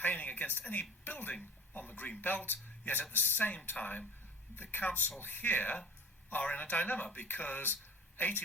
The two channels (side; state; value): both; normal; correlation 0.43